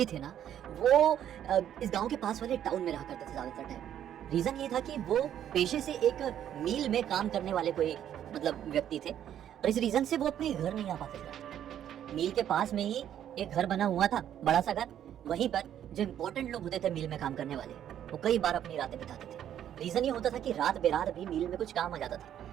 थे ना, वो इस गांव के पास वाले टाउन में रहा करते थे ज्यादातर टाइम। रीजन ये था कि वो पेशे से एक मिल में काम करने वाले कोई व्यक्ति थे और इस रीजन से वो अपने घर नहीं आ पाते थे। मिल के पास में ही एक घर बना हुआ था, बड़ा सा घर। वहीं पर जो इम्पोर्टेंट लोग होते थे मिल में काम करने वाले, वो कई बार अपनी रातें बिताते थे। रीजन ये होता था कि रात बेरात भी मिल में कुछ काम आ जाता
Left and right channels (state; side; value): quieter; left; 10.4 dB